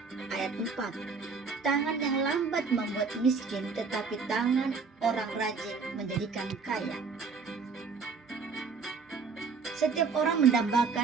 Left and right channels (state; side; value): quieter; left; 5.0 dB